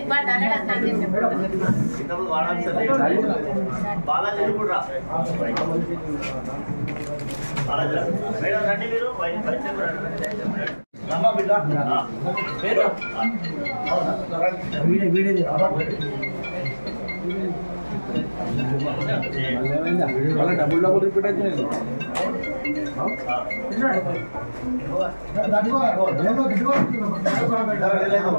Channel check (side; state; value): both; inverted; correlation -1.00